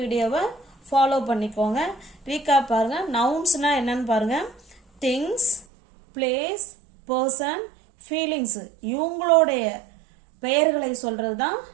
ஃபாலோ பண்ணிக்கோங்க. ரீகாப் பாருங்கள். நவுன்ஸ்னால் என்னன்னு பாருங்கள். திங்ஸ், பிளேஸ், பர்சன், ஃபீலிங்ஸு இவங்களுடைய பெயர்களை சொல்கிறது தான்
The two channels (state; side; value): drops out; left; at 5.7 s